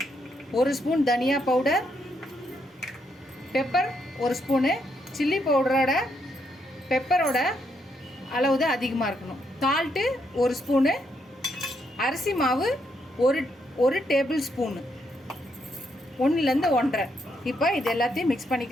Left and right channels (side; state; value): both; normal; correlation 0.77